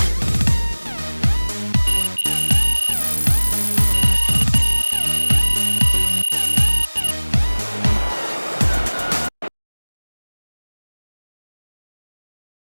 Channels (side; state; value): both; inverted; correlation -1.00